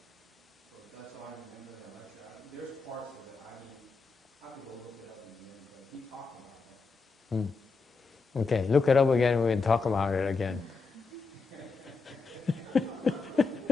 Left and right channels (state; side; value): quieter; right; 4.4 dB